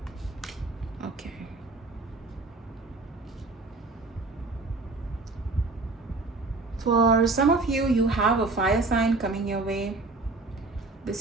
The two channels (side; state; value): left; quieter; 3.5 dB